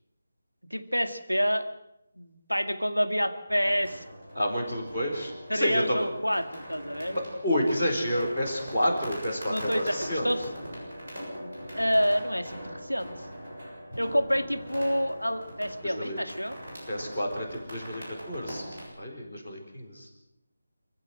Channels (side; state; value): both; inverted; correlation -0.94